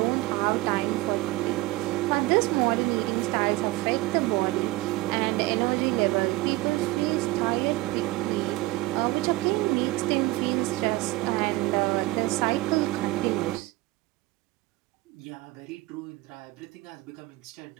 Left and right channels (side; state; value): left; quieter; 19.1 dB